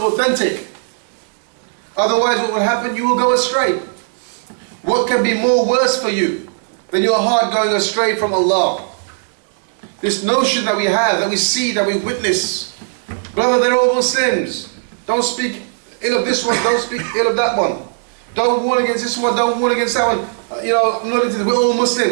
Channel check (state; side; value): silent; left; 64 dB below the other